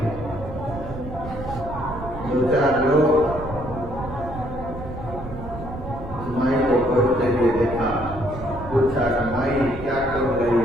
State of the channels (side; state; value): right; noise; rumble, 10 dB below the sound